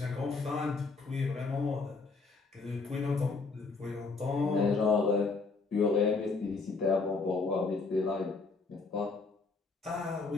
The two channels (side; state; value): right; quieter; 4.1 dB